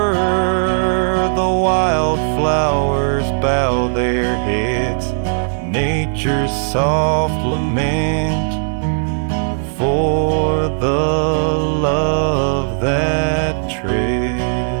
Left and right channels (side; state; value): left; silent; 59 dB below the other